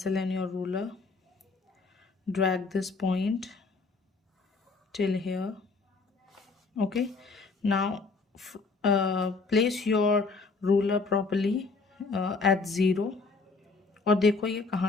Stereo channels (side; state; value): right; quieter; 4.2 dB